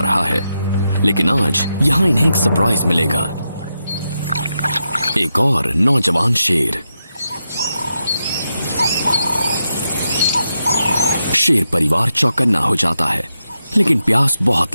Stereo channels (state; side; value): inverted; both; correlation -0.86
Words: रहा है, लेकिन आज यहां इन्हें एक सरप्राइज मिलेगा। एक और नौजवान शेर। शेर परिवार चौकन्ना हो जाता है, लेकिन प्यास बहुत